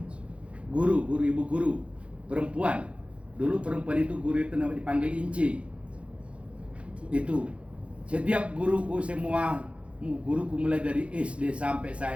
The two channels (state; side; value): late; left; 0.061 ms